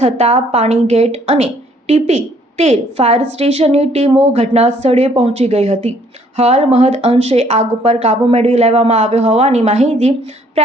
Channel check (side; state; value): both; normal; correlation 0.63